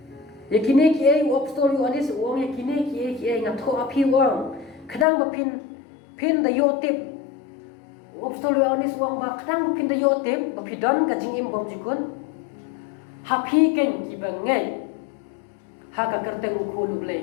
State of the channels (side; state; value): right; drops out; at 5.1 s